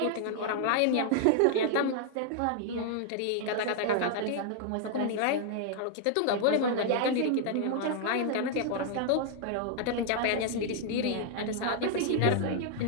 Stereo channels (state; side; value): different; both; correlation 0.00